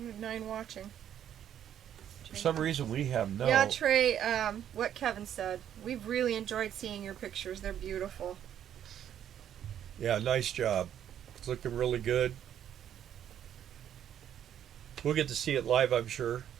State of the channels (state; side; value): quieter; left; 10.1 dB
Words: have 9 watching. For some reason we have no. Yeah, Trey, what Kevin said. We've really enjoyed seeing your pictures. They're beautiful. Yeah, nice job. It's looking really good. We'll get to see it live, I'm sure.